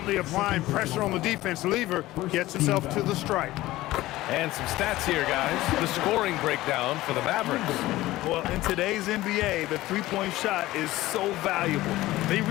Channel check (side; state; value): right; quieter; 17.1 dB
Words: applying pressure on the defense. Lever gets himself to the strike. And some stats here, guys. The scoring breakdown for the Mavericks. Well, in today's NBA, the three-point shot is so valuable. They